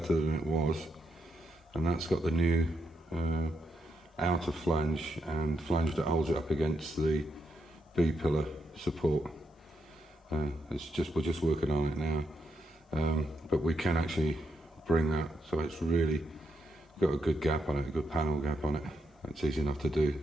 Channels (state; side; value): normal; both; correlation 0.81